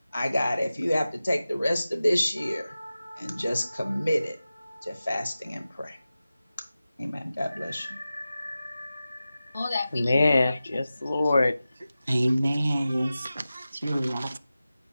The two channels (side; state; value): both; inverted; correlation -0.95